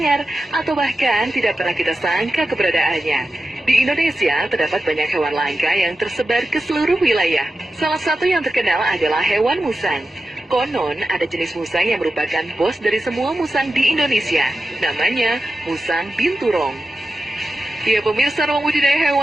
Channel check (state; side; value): normal; both; correlation 0.92